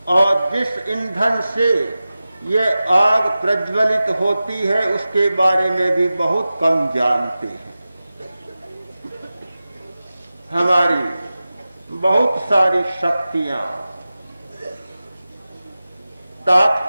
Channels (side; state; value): both; inverted; correlation -0.95